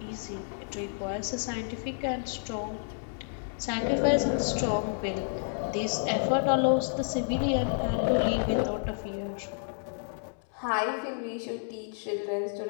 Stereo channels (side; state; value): right; silent; 58 dB below the other